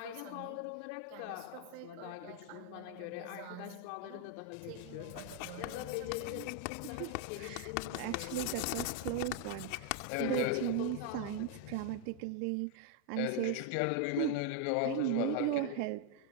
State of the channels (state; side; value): different; both; correlation 0.00